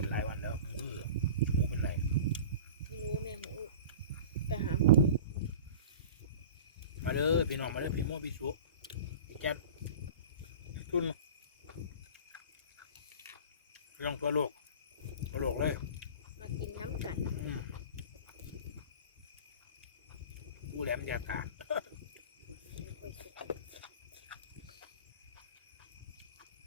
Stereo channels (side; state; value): both; inverted; correlation -0.38